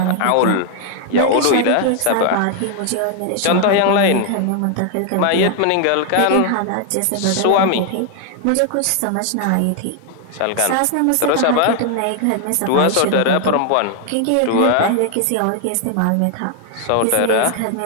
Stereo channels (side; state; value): both; different; correlation 0.00